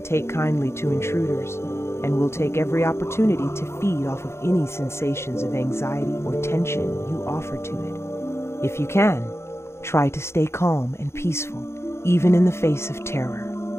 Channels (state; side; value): late; right; 0.13 ms